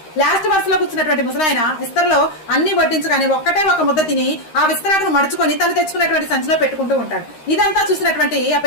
లాస్ట్ బస్ లో కూర్చున్నటువంటి ముసలాయన విస్తరలో అన్ని వడ్డించుకొని ఒక్కటే ఒక ముద్ద తిని ఆ విస్తరాకును మడుచుకొని తను తెచ్చుకున్నటువంటి సంచిలో పెట్టుకుంటూ ఉంటాడు. ఇదంతా చూసినటువంటి ఆ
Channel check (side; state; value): right; late; 13 ms